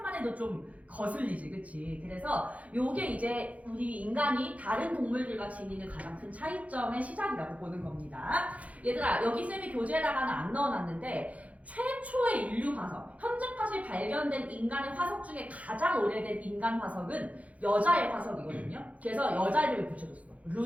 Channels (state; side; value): late; left; 0.068 ms